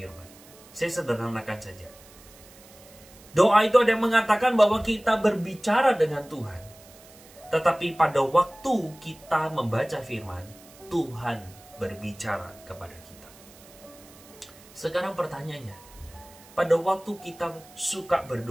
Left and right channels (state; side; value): noise; right; hiss, 23 dB below the sound